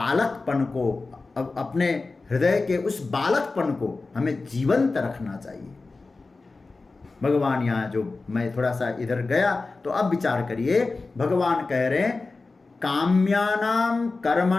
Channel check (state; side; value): quieter; right; 3.7 dB